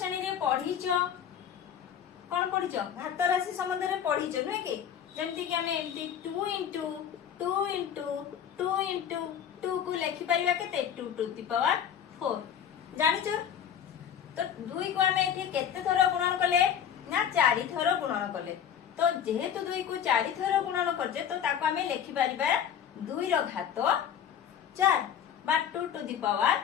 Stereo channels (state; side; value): quieter; right; 8.8 dB